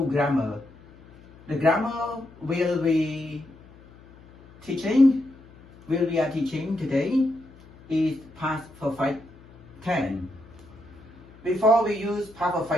grammar. The grammar we are teaching today is past perfect tense. Before we use past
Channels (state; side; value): noise; left; hum, 23 dB below the sound